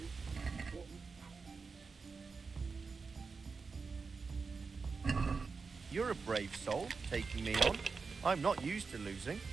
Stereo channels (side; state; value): left; quieter; 4.7 dB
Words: You're a brave soul, taking me on. I'm not used to losing.